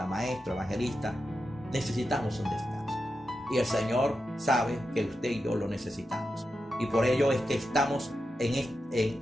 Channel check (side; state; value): both; normal; correlation 0.89